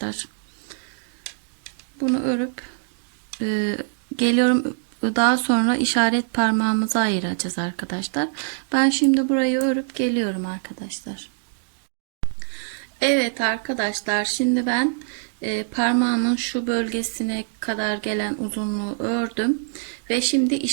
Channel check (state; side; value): silent; left; digital silence